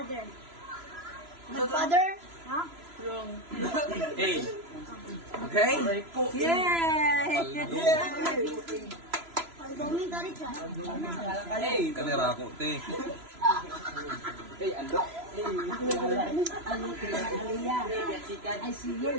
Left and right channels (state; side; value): late; left; 3.0 ms